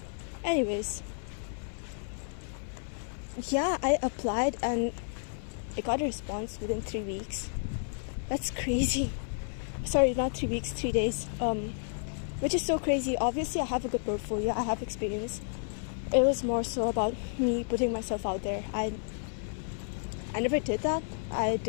Anyways, yeah, I applied and I got a response within 3 weeks. That's crazy. Sorry, not 3 weeks, 3 days. Which is so crazy. Obviously, I have a good portfolio, I have experience. It was more so about me putting myself out there. I never did that. I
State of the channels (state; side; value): silent; right; 57 dB below the other